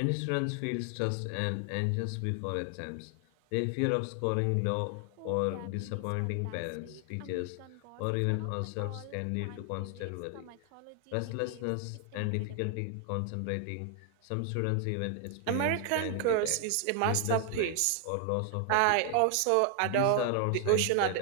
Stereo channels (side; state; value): both; different; correlation 0.00